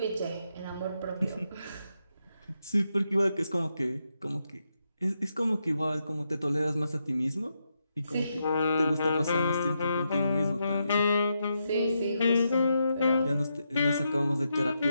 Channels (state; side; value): inverted; both; correlation -0.83